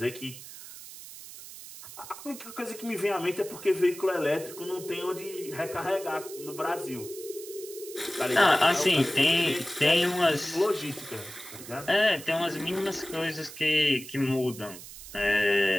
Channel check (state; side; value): noise; right; hiss, 14 dB below the sound